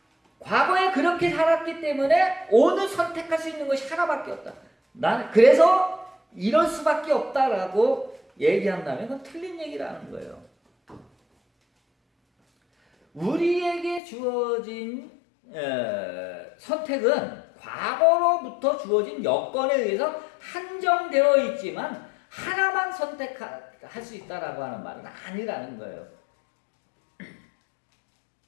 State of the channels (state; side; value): drops out; right; at 14.0 s